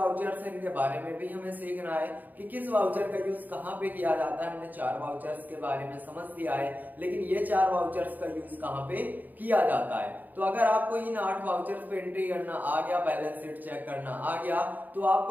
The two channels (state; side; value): late; left; 0.084 ms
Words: हैं इनके बारे में भी हमें सीखना है कि किस वाउचर का यूज कहाँ पे किया जाता है। हमने 4 वाउचर्स के बारे में समझ लिया है, लेकिन ये 4 वाउचर्स का यूज कहाँ पे किया जाता है। तो अगर आपको इन 8 वाउचर्स पे एंट्री करना आ गया, बैलेंस शीट चेक करना आ गया, तो